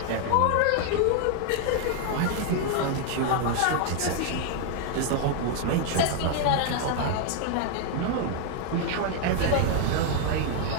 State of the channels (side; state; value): both; different; correlation 0.00